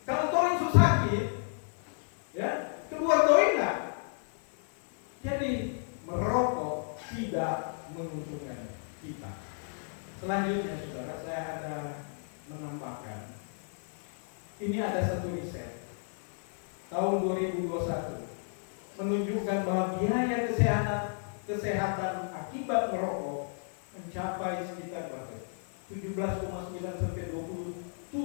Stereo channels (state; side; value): silent; right; 56 dB below the other